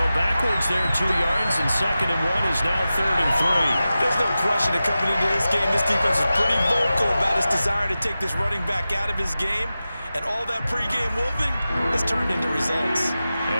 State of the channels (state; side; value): inverted; both; correlation -0.94